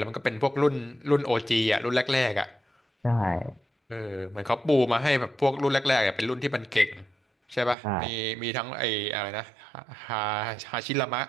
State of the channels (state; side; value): drops out; left; at 7.8 s